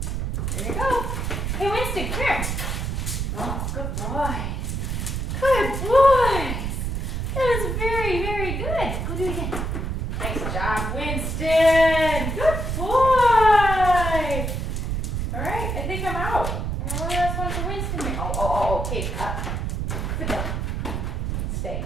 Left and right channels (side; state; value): right; noise; rumble, 2 dB below the sound